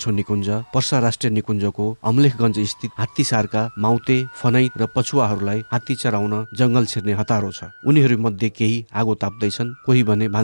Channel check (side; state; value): both; inverted; correlation -1.00